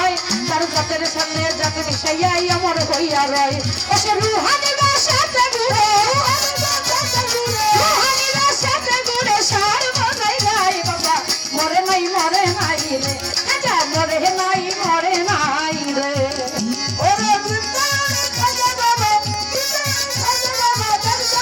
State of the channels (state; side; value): identical; both; correlation 1.00